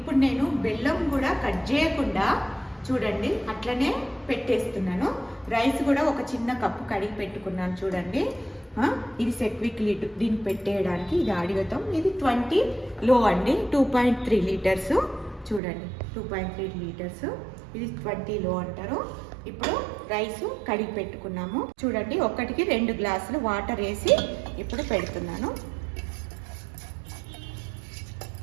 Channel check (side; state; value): left; drops out; at 15.6 s